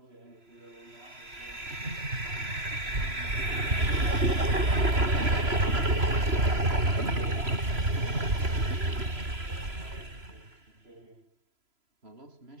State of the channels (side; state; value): left; late; 3.0 ms